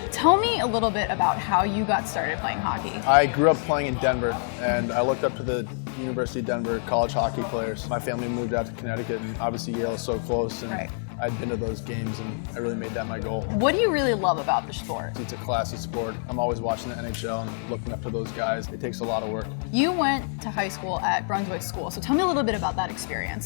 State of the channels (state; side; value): silent; right; 61 dB below the other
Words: tell me a little bit about how you got started playing hockey. I grew up playing in Denver, and I looked up to the University of Denver college hockey players. My family moved out to Connecticut, and obviously Yale is so close, and Right. I'd been to those games, and I really made that my goal. What do you really love about the sport? It's a classy sport. I'm always watching the NHL and looking up to those guys. It takes a lot of work. You went to high school at Brunswick School, so tell me a little bit about that